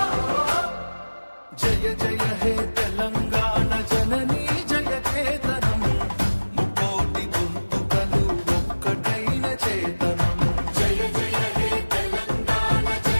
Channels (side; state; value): both; inverted; correlation -1.00